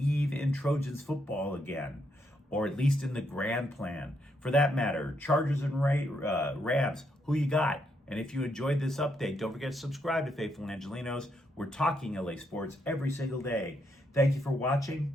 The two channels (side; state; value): both; normal; correlation 0.77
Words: in Trojans football again, or at least in the grand plan. For that matter, Chargers and Rams, who you got? And if you enjoyed this update, don't forget to subscribe to Faithful Angelenos. We're talking LA sports every single day. Thank you for